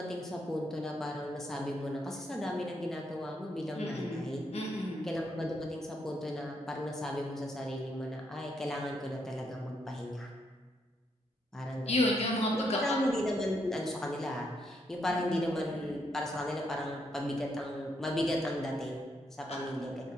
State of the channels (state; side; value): normal; both; correlation 0.77